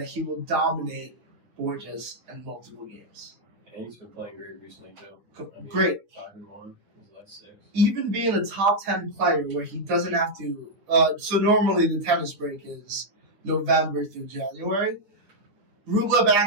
he will dominate Borges in multiple games. And he's been playing great recently, too. Great. 5-1, his last 6. Even being a top 10 player where he doesn't have to, so normally the tennis break is November through January. Rublev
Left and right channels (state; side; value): late; left; 9.4 ms